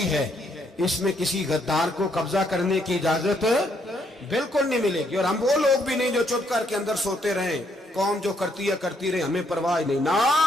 है। इसमें किसी गद्दार को कब्जा करने की इजाजत बिल्कुल नहीं मिलेगी। और हम वो लोग भी नहीं जो चुप करके अंदर सोते रहे, कौम जो करती है करती रहे, हमें परवाह नहीं। ना,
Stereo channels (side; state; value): both; normal; correlation 0.72